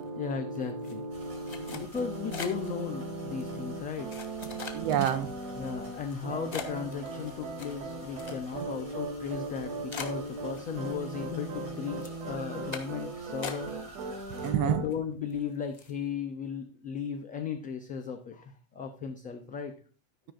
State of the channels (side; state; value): left; late; 8.0 ms